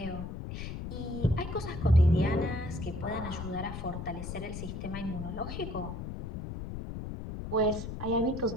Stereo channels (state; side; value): noise; left; rumble, 7 dB below the sound